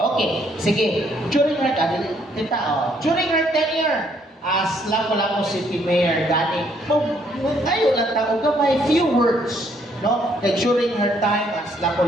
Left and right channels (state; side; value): normal; both; correlation 0.68